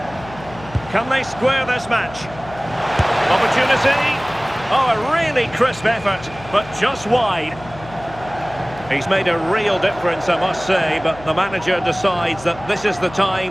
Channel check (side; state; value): left; noise; hum, 18 dB below the sound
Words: Can they square this match? Opportunity. Oh, a really crisp effort, but just wide. He's made a real difference, I must say, but the manager decides that this is the